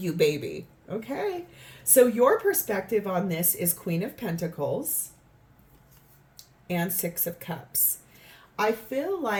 baby. Okay. So your perspective on this is Queen of Pentacles and Six of Cups. I feel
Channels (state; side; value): identical; both; correlation 1.00